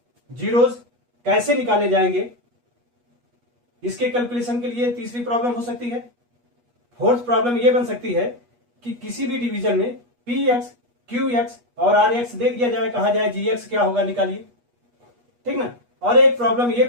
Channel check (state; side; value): late; left; 8.3 ms